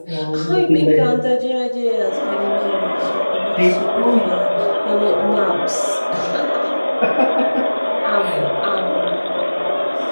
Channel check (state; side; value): inverted; both; correlation -1.00